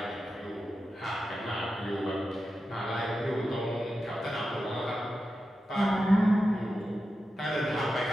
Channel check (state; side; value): normal; both; correlation 0.91